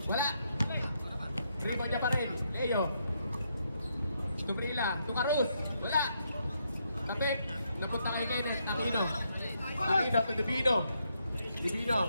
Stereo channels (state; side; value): inverted; both; correlation -0.77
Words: Wala. Rebound niya pa rin. Leo. Tubrila. Tukarus. Wala. Tapit. Napunta kay Kenneth. Aquino. Aquino to Divino.